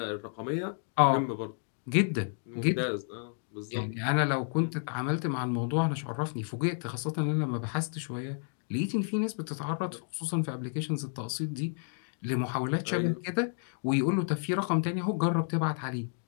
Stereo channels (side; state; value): right; silent; 57 dB below the other